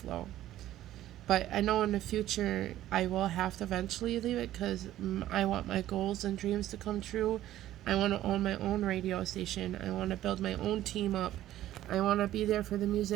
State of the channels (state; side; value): quieter; left; 13.6 dB